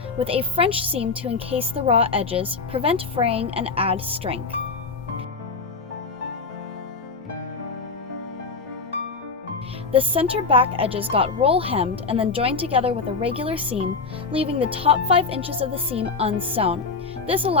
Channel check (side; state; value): right; quieter; 4.4 dB